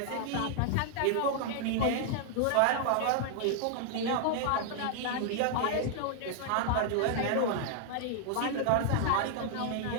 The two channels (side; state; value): both; different; correlation -0.01